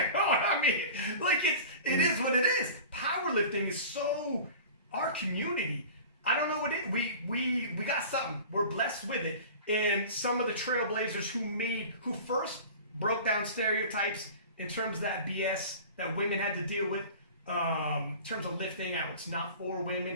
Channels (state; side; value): inverted; both; correlation -0.38